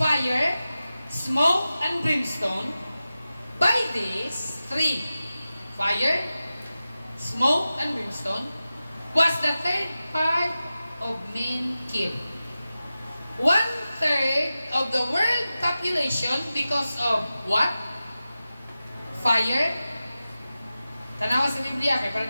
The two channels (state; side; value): inverted; both; correlation -0.94